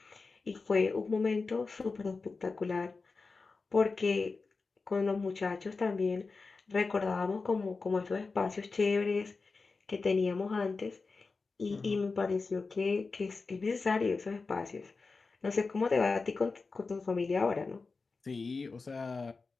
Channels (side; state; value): right; quieter; 4.2 dB